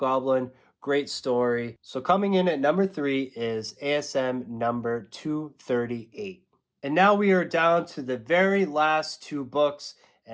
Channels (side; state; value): both; identical; correlation 1.00